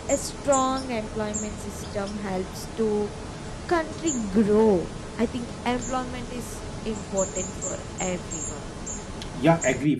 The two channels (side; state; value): both; identical; correlation 1.00